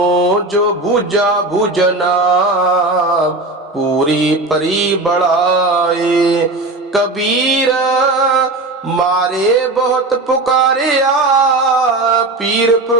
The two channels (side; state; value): left; quieter; 3.0 dB